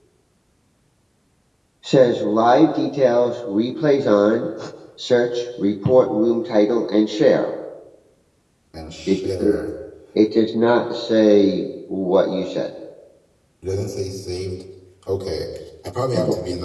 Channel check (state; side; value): identical; both; correlation 1.00